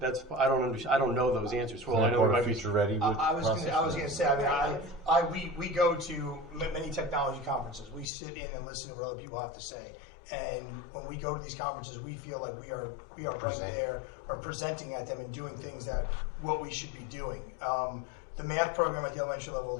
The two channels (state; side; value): drops out; right; at 8.1 s